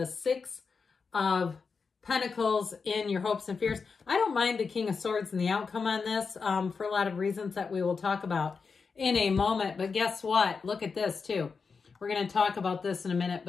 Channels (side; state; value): right; quieter; 5.1 dB